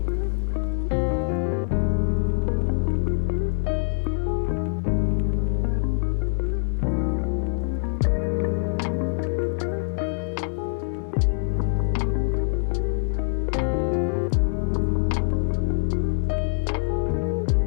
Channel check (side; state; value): right; silent; digital silence